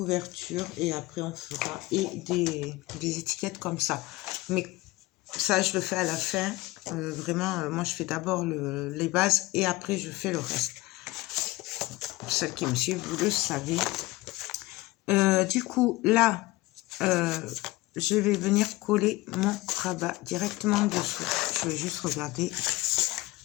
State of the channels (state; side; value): quieter; right; 19.5 dB